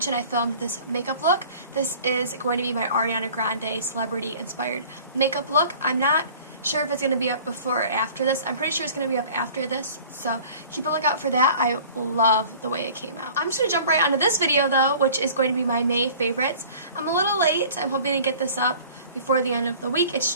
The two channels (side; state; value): both; inverted; correlation -0.46